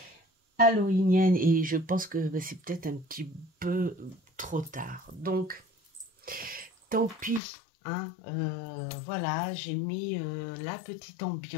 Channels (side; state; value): right; drops out; at 7.4 s